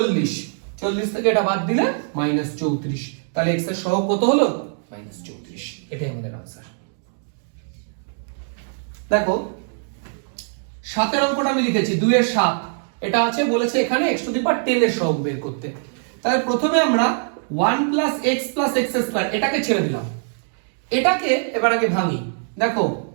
40 থেকে এটা বাদ দিলে -34। তাহলে x এর সহগ কত হলো? -34। এটাই আমাদের आंसर। দেখো 7 এর অঙ্কটা আমি লিখেছি 2 এর 7, এটা আছে বলেছে এখানে x⁻10 এর সহগ বের করতে। তাহলে প্রথমে আমরা 1 + x + x², এটাকে ছেড়ে দিলাম। এটাকে এবার আগে ভাঙি। দেখো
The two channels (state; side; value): silent; left; 64 dB below the other